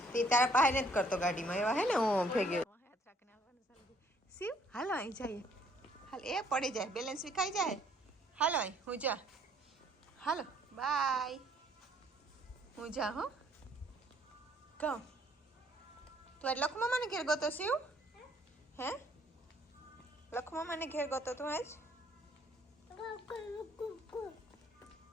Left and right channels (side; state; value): both; normal; correlation 0.63